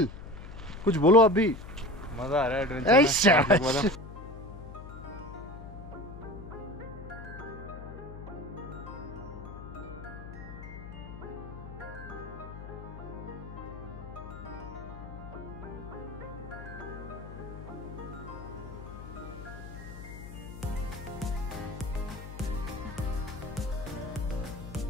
कुछ बोलो आप भी। मजा आ रहा है एडवेंचर में।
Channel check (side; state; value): left; noise; hum, 12 dB below the sound